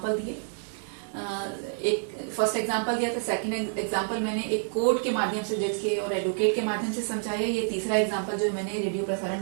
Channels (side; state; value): left; silent; digital silence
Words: दिए, एक फर्स्ट एग्जांपल दिया था, सेकंड एग्जांपल मैंने एक कोर्ट के माध्यम से, जज के और एडवोकेट के माध्यम से समझाया, ये तीसरा एग्जांपल जो मैंने रेडियो प्रसारण